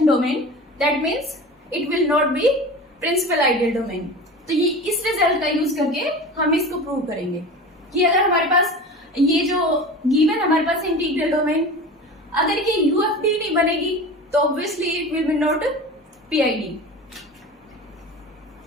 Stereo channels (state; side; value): normal; both; correlation 0.33